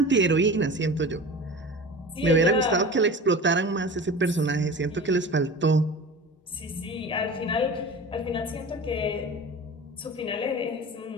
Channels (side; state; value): both; normal; correlation 0.35